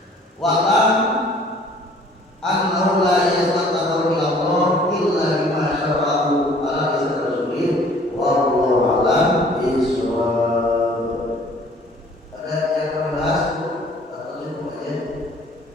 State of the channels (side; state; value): both; normal; correlation 0.54